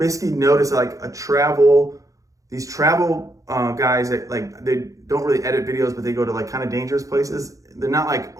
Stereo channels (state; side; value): late; left; 0.16 ms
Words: noticed like these travel guys that like, they don't really edit videos, but they go to like kind of dangerous places. They're not like